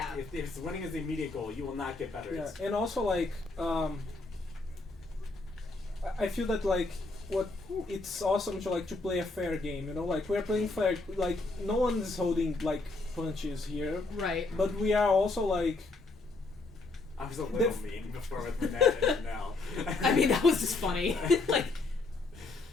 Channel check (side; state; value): right; quieter; 3.4 dB